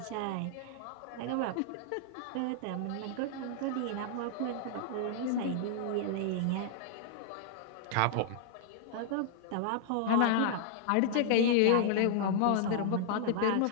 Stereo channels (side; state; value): both; different; correlation -0.01